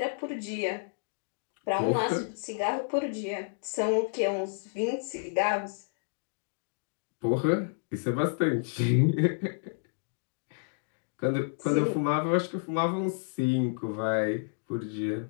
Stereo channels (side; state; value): right; silent; digital silence